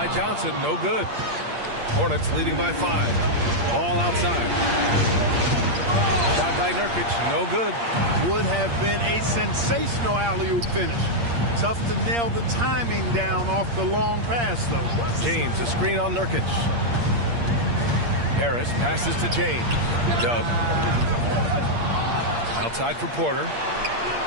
Johnson. No good. Hornets leading by 5. Ball outside. Shot by Nurkic. No good. Would have been a sensational alley-oop finish. Tough to nail the timing down off the long pass, though. James, a screen on Nurkic. Harris passes to James. Dub. Outside for Porter.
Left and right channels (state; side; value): late; left; 8.6 ms